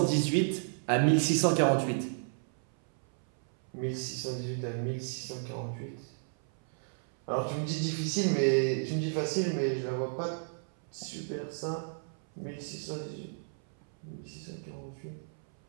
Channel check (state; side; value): silent; left; 56 dB below the other